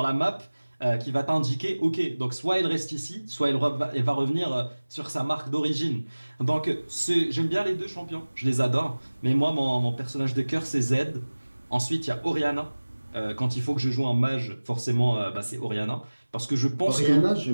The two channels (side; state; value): both; inverted; correlation -1.00